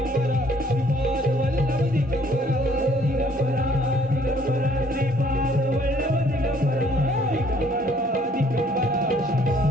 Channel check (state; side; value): normal; both; correlation 0.61